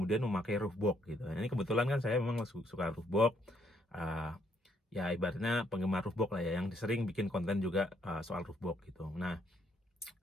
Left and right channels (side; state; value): both; normal; correlation 0.70